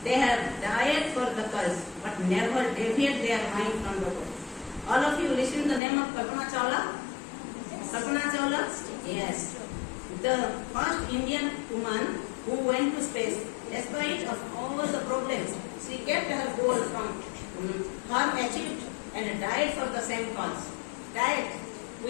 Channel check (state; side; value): drops out; right; at 5.8 s